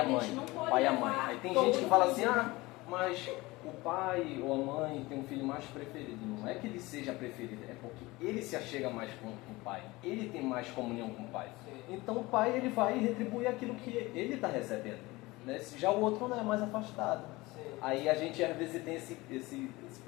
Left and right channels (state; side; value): quieter; right; 21.3 dB